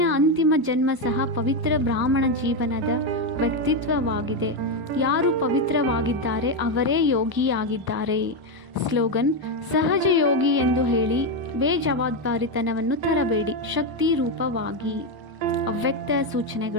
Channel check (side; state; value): left; late; 1.0 ms